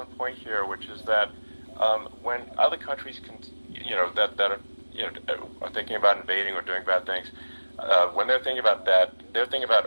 point here, which is that when other countries that are thinking about invading or doing bad things, when they're thinking about that, they're thinking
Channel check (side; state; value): both; inverted; correlation -1.00